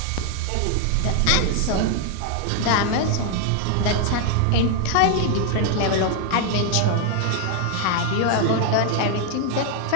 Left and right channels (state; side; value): different; both; correlation 0.00